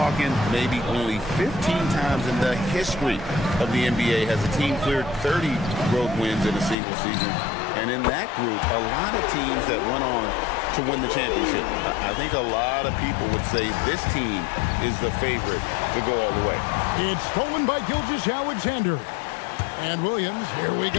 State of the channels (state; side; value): drops out; right; at 6.8 s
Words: maybe only 15 times in the history of the NBA has a team cleared 30 road wins in a single season. And in that group, a lot of teams that went on to win the championship. I think a lot of people would say this team is the favorite to go all the way. It's stolen by Gilgeous-Alexander. And Williams, here we